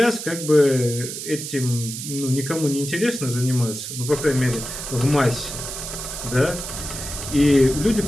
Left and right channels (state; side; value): noise; right; hiss, 7 dB below the sound